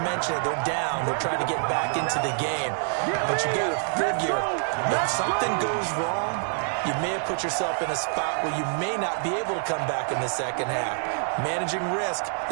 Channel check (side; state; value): left; silent; 61 dB below the other